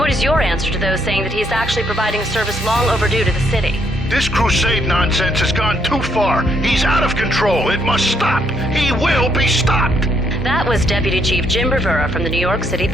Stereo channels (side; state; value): both; normal; correlation 0.72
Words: Your answer to those saying that he's actually providing a service long overdue to the city. This crusade nonsense has gone too far. He's out of control. It must stop. He will be stopped. That was Deputy Chief Jim Rivera from the New York City